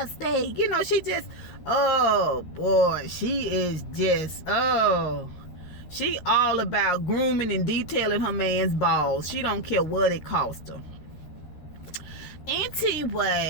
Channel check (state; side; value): late; right; 13 ms